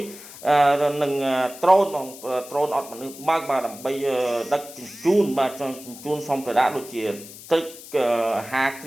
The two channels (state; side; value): noise; left; hiss, 16 dB below the sound